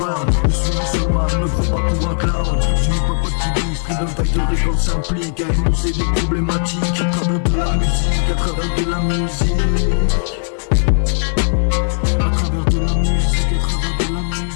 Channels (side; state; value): right; silent; 68 dB below the other